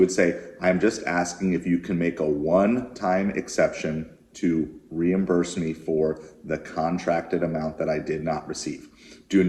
say, I'm just asking if you can make a one-time exception to reimburse me for the contracted amount that I did not receive. Do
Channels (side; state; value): both; identical; correlation 1.00